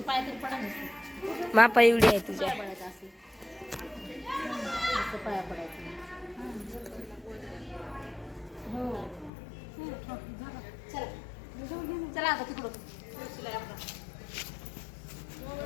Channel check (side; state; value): right; drops out; at 9.3 s